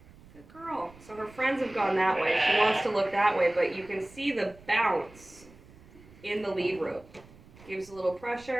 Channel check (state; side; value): noise; right; rumble, 23 dB below the sound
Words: Good girl. So her friends have gone that way. She wants to look that way, but you can see the bounce in the lead rope. Gives a little